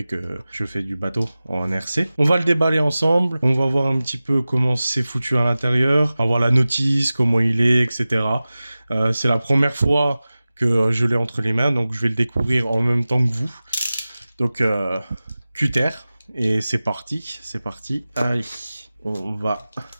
que je fais du bateau en RC. On va le déballer ensemble, on va voir un petit peu comment c'est foutu à l'intérieur, on va voir la notice, comment il est, etc. C'est la première fois que je l'ai entre les mains, donc je vais le découvrir en même temps que vous. Donc, cutter, et c'est parti, c'est parti. Allez, on va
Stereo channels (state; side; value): inverted; both; correlation -0.96